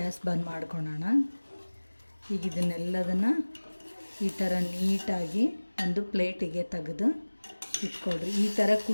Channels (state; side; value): inverted; both; correlation -1.00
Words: ಬಂದ್ ಮಾಡ್ಕೊಳ್ಳೋಣ. ಈಗ ಇದನ್ನೆಲ್ಲದನ್ನು ಈ ಥರ ನೀಟಾಗಿ ಒಂದು ಪ್ಲೇಟಿಗೆ ತೆಗೆದು ಇಟ್ಕೊಳ್ರಿ. ಈ ಥರ